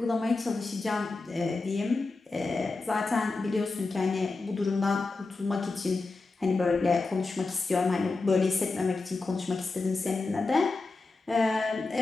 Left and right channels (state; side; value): quieter; right; 3.7 dB